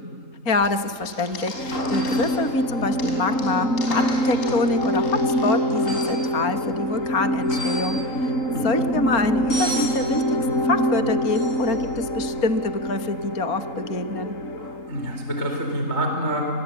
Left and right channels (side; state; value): right; late; 3.8 ms